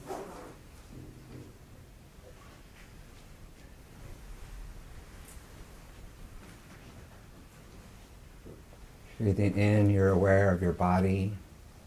Breathing in, you're aware of your body.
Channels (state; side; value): identical; both; correlation 1.00